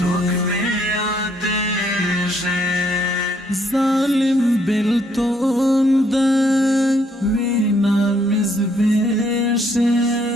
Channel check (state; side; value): normal; both; correlation 0.69